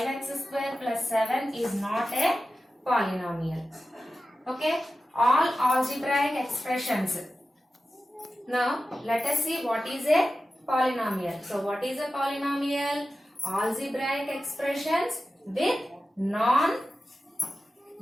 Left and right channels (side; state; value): both; normal; correlation 0.93